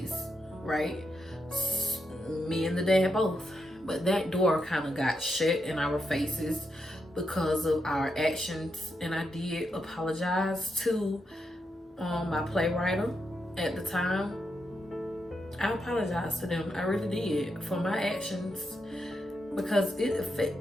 right? Me and the dad both. But that door kind of got shut in our faces because of our actions. And I did apologize to my playwright at the time. I apologize to them. I really did for my actions, because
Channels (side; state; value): both; normal; correlation 0.84